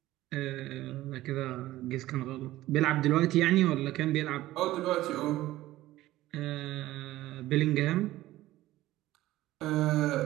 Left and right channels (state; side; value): quieter; left; 16.0 dB